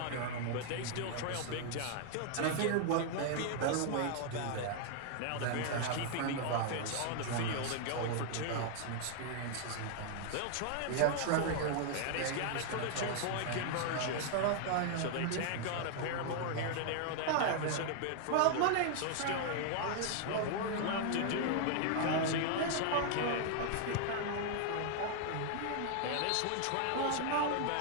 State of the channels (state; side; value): different; both; correlation 0.00